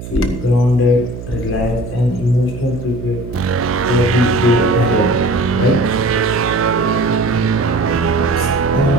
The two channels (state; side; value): noise; right; hum, 11 dB below the sound